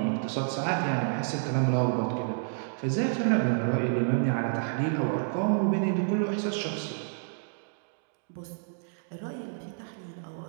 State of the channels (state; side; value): silent; left; digital silence